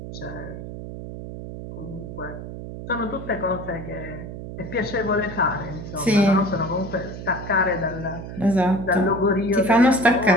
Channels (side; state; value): right; noise; hum, 10 dB below the sound